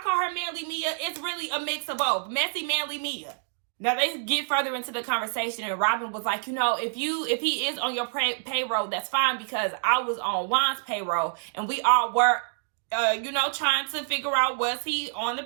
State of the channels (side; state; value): left; silent; digital silence